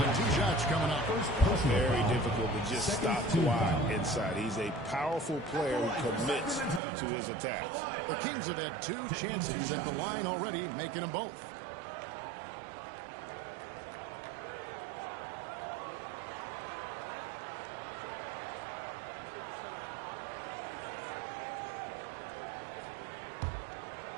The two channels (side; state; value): left; drops out; at 6.8 s